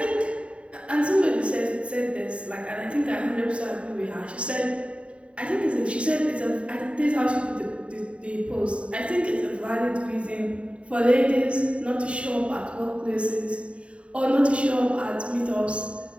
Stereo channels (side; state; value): left; late; 0.061 ms